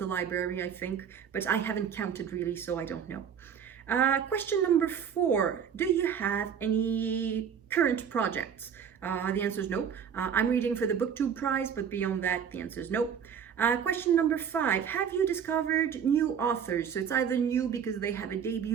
library, I think, but I haven't counted really, so I don't know. Question number 4, do you have any current projects? The answer is no. I'm reading for the BookTube Prize, but beyond that, the answer is no. Question number 5, have you discovered new authors? So it's either new because they have a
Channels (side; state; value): left; quieter; 7.7 dB